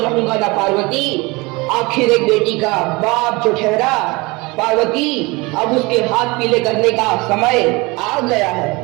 ना पार्वती, आखिर एक बेटी का बाप जो ठहरा। पार्वती, अब उसके हाथ पीले करने का समय आ गया है।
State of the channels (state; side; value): quieter; left; 24.6 dB